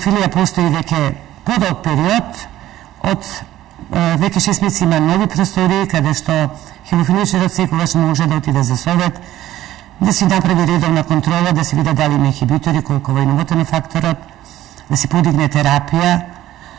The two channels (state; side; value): quieter; left; 14.0 dB